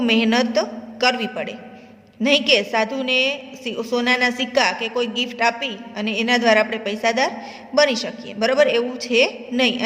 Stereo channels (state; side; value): identical; both; correlation 1.00